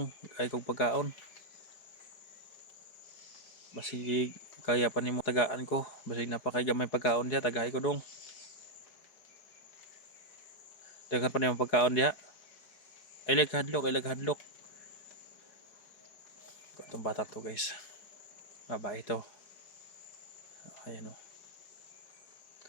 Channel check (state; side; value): late; right; 4.8 ms